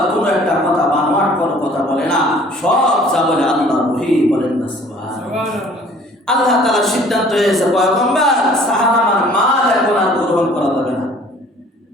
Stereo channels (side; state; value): both; normal; correlation 0.53